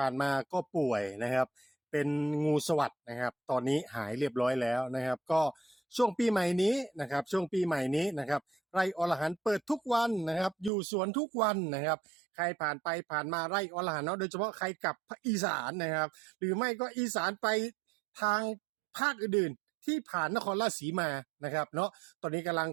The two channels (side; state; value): left; drops out; at 10.7 s